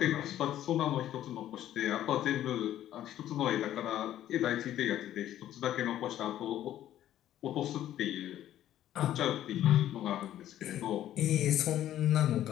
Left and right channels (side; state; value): right; quieter; 12.2 dB